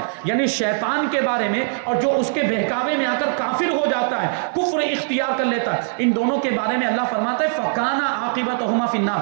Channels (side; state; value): left; silent; digital silence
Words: یعنی شیطان کے بارے میں اور جو اس کے بہکاوے میں آ کر کافر ہو جاتا ہے، کفر اختیار کر لیتا ہے، ان دونوں کے بارے میں اللہ فرماتا ہے فَكَانَ عَاقِبَتُهُمَا فِي